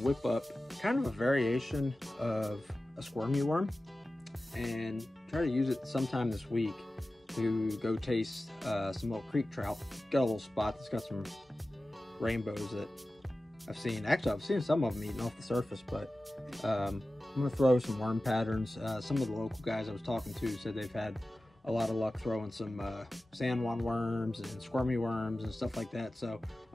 up kind of a variation of a squirmy worm and try to use it sometime this week to go taste some little creek trout. Got a little spot that's got some rainbows that I've seen. Actually, I've seen some of them eating off the surface, but I'm gonna throw some worm patterns. Some of the local guys I was talking to said they've had a lot of luck throwing some San Juan worms and squirmy worms and stuff like that. So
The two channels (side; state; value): both; normal; correlation 0.95